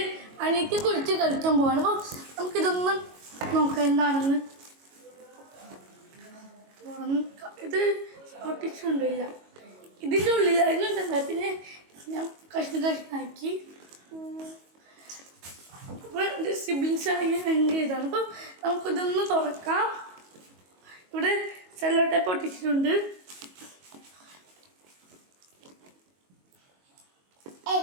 അനിയത്തിയെ കുറിച്ച് കളിക്കാൻ പോവാണ്. അപ്പോൾ നമുക്കിതൊന്നും നോക്കാം എന്താണെന്ന്. ഇത് ഒട്ടിച്ചുകൊണ്ടില്ല, ഇതിൻ്റെ ഉള്ളിലായിരുന്നു ഇതെന്താ. പിന്നെ ഞാൻ കഷ്ണാക്കി. അപ്പോൾ എൻ്റെ സിബ്ലിങ്സ് ആണെങ്കിൽ ഭയങ്കര ഇതാണ്. അപ്പോൾ നമുക്കിതൊന്ന് തുറക്കാം. ഇവിടെ സെല്ലോ ടേപ്പ് ഒട്ടിച്ചിട്ടുണ്ട്.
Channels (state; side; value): late; left; 22 ms